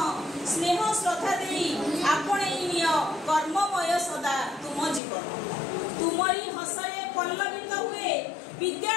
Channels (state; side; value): drops out; right; at 5.0 s